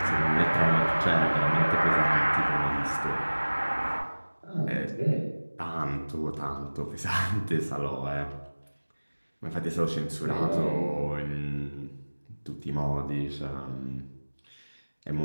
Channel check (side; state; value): both; inverted; correlation -1.00